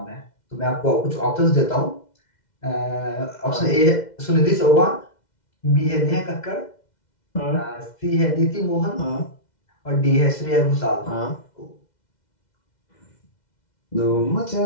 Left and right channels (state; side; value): late; right; 2.1 ms